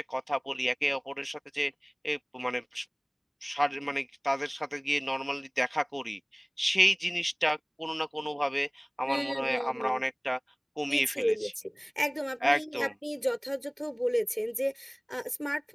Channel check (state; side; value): identical; both; correlation 1.00